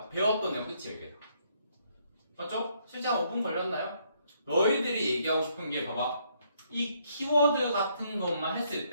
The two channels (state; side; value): inverted; both; correlation -0.71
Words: 배웠던 내용 끝이에요 이게. 맞죠? 실제 한 5분 걸렸나요? 너희들이 얘기하고 싶은 게 봐봐 이 키워드 같은 것만 했을